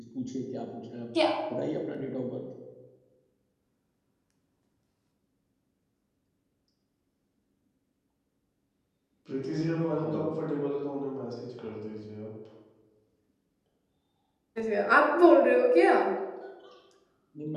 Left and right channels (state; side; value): identical; both; correlation 1.00